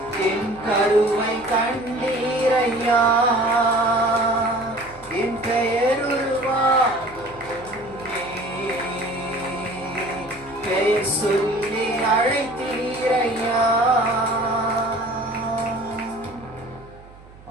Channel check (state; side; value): noise; right; hum, 22 dB below the sound